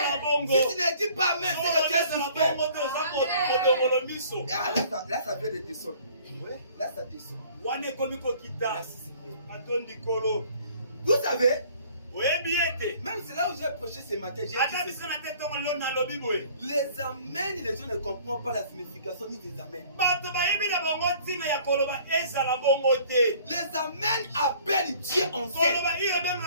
Si tu ne dis pas amen, c'est que tu es suspect. Ah, là, ça vient de descendre. Ouais, là, ça descend. Merci, Seigneur. Vous savez, Même c'est là où j'ai prêché ce matin. J'ai dit les amens, les gens ne comprennent pas la signification ni des amens. Les amens appellent Dieu en scène.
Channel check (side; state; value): both; inverted; correlation -0.54